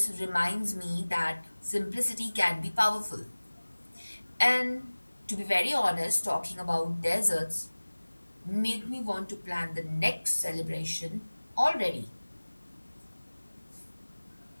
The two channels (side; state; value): both; inverted; correlation -1.00